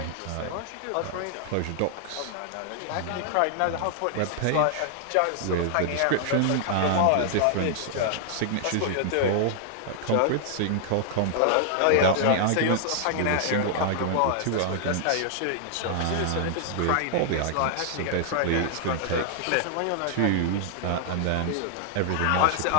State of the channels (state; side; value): different; both; correlation 0.00